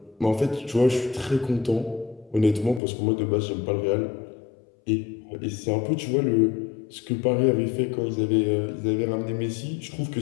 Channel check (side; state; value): right; drops out; at 2.8 s